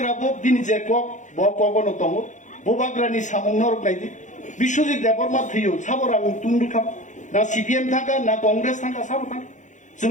বক দিনি যে কক ব কগনো তং বুবাগ্রানি সামং নরক নাইদি বিশ্বজিৎ দেববর্মা থিयो সাবরাং তুন্ডুখাম ना सीपीएम थाका ना कांग्रेस थाका साबो थाका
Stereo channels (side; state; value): right; late; 0.36 ms